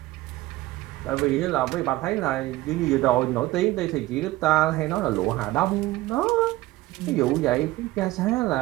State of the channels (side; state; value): left; quieter; 17.5 dB